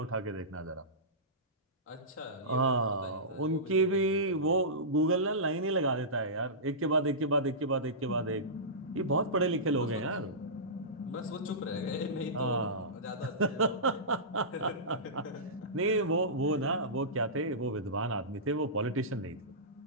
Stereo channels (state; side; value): normal; both; correlation -0.19